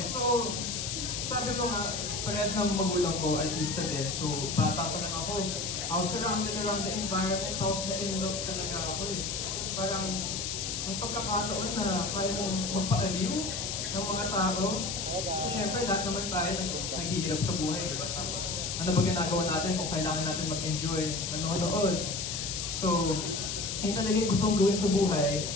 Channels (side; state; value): left; noise; hiss, 3 dB below the sound